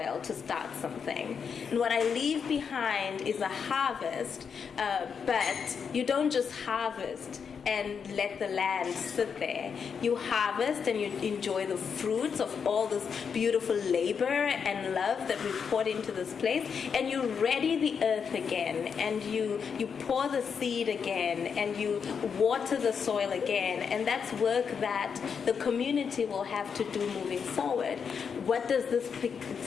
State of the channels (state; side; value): quieter; right; 6.5 dB